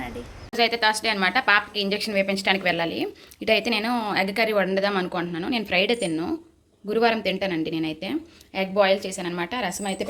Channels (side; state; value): both; identical; correlation 1.00